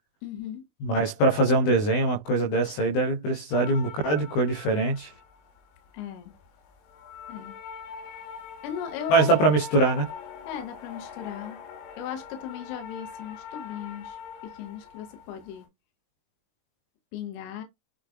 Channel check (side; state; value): right; late; 20 ms